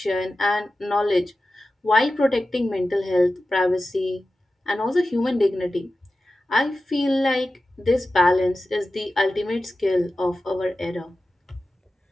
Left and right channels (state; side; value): normal; both; correlation 0.94